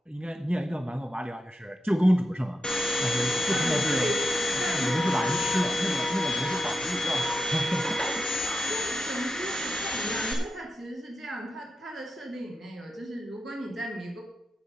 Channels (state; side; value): normal; both; correlation 0.86